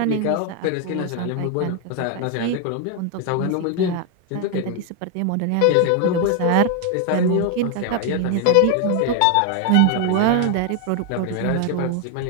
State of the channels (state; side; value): different; both; correlation 0.01